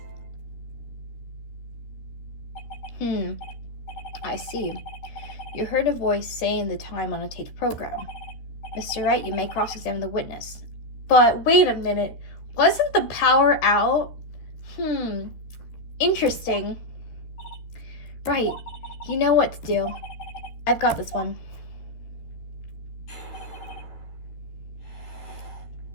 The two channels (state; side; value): late; right; 13 ms